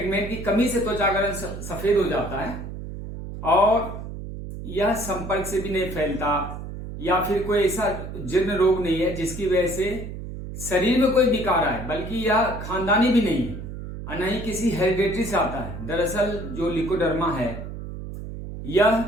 की कमी से त्वचा का रंग सफेद हो जाता है और यह संपर्क से भी नहीं फैलता या फिर कोई ऐसा जीर्ण रोग नहीं है जिसकी वजह से शरीर में कोई विकार आए, बल्कि यह खानदानी भी नहीं है और न ही किसी हेरिडेटरी से आता है। दरअसल जो ल्यूकोडर्मा है यह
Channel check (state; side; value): noise; right; hum, 9 dB below the sound